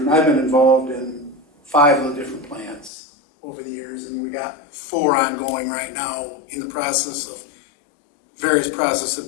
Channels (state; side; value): drops out; right; at 2.9 s